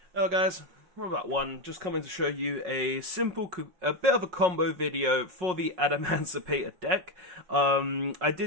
Hello guys, we're about one, just coming to show you a a bit of a combo video for the Adamancipator deck. I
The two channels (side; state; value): left; late; 5.5 ms